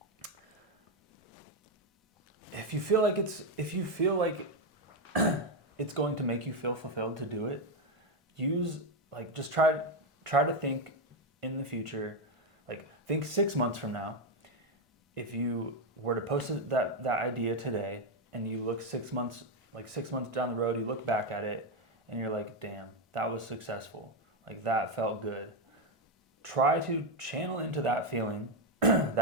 If you feel like it's going to make you feel fulfilled to do it, just try to think in the future, like think 6 months from now. If you were to post that idea today, and you look 6 months down the road, you look back at it and you're like, damn, that was successful. Like that felt good. Try to channel into that feeling,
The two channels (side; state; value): both; normal; correlation 0.06